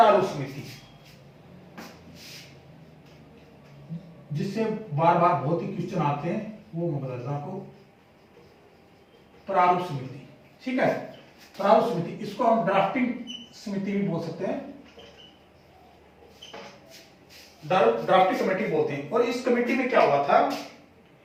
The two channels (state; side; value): identical; both; correlation 1.00